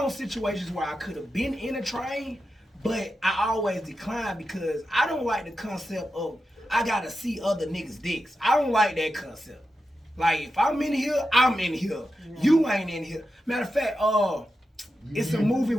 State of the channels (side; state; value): both; normal; correlation 0.90